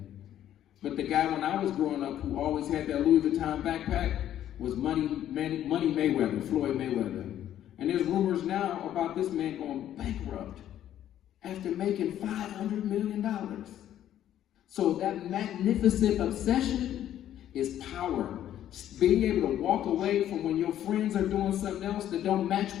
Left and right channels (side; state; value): right; quieter; 11.5 dB